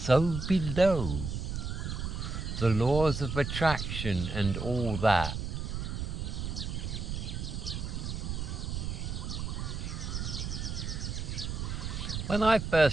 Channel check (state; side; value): noise; right; rumble, 4 dB below the sound